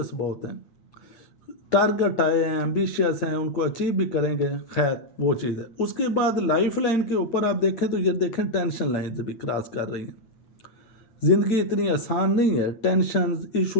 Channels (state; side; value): late; right; 8.8 ms